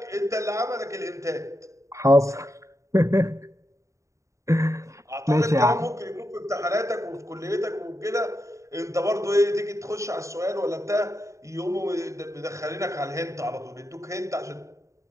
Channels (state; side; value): late; left; 0.15 ms